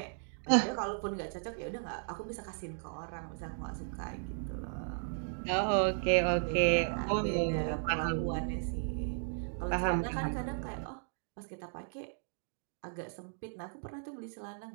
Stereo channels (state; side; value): silent; left; digital silence